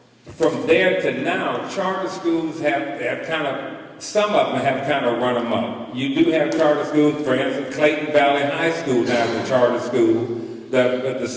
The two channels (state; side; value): identical; both; correlation 1.00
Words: from there to now, charter schools have kind of, some of them have kind of run amok. You do have charter schools, for instance, Clayton Valley High School now is a charter school. The